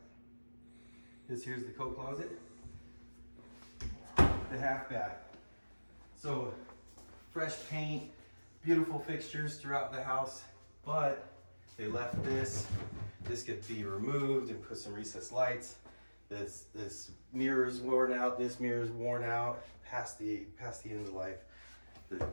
Here's the coat closet, the half bath. So fresh paint, beautiful fixtures throughout the house, but they left this. This could be removed and put some recessed lights. This mirror's worn out. This mirror's worn out past the end of life. The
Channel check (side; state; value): both; inverted; correlation -1.00